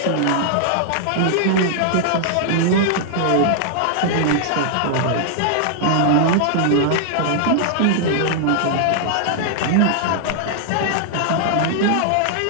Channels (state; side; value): different; both; correlation -0.01